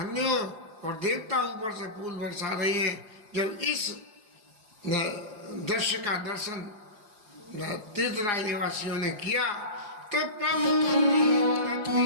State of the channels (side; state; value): left; late; 4.9 ms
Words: हो। और देवता ऊपर से फूल बरसा रहे हैं। जब इस दृश्य का दर्शन तीर्थराज निवासियों ने किया तो